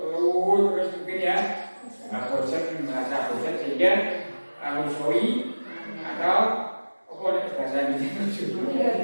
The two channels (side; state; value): both; inverted; correlation -1.00